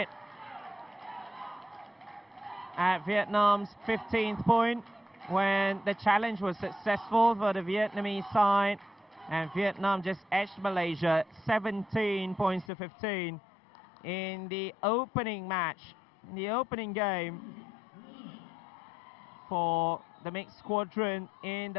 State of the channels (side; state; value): right; drops out; at 12.7 s